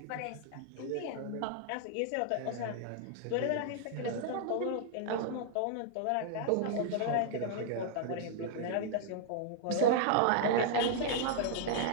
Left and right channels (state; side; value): different; both; correlation -0.01